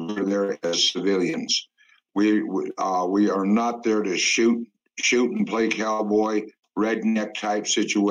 there as civilians. We are not there to shoot and play cowboy, redneck type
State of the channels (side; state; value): both; identical; correlation 1.00